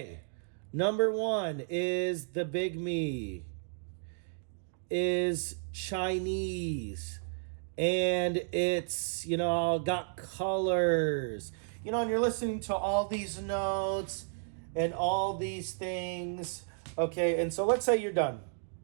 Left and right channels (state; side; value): silent; left; digital silence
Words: number 1 is the Bigme is Chinese. And it's, you know, got colors. You know, and you're listening to all these notes and all these things. Okay, and so let's say you're done.